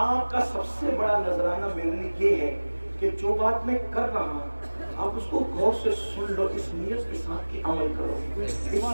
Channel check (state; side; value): inverted; both; correlation -1.00